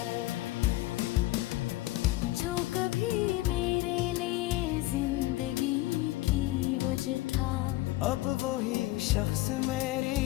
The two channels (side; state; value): right; quieter; 18.0 dB